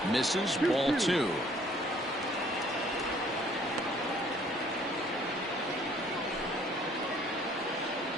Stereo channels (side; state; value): left; noise; rumble, 26 dB below the sound